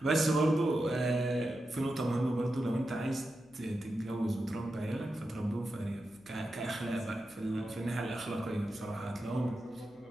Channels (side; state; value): left; noise; hum, 30 dB below the sound